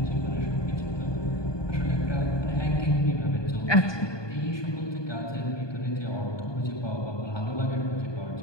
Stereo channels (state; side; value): late; right; 1.2 ms